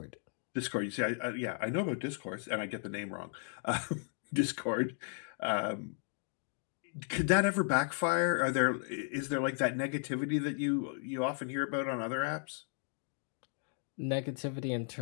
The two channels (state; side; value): silent; right; 54 dB below the other